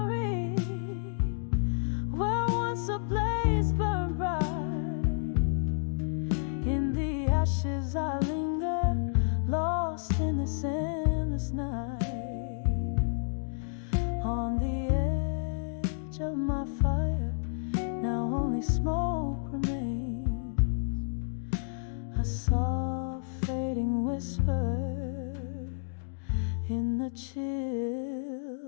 where once a blaze burned bright. In the ashes I linger, lost in this endless night. On the edge of my fire, now only smoke remains. A soft fading whisper in the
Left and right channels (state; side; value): silent; right; digital silence